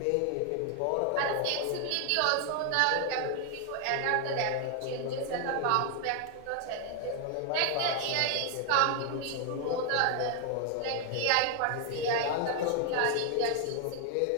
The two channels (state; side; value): different; both; correlation 0.00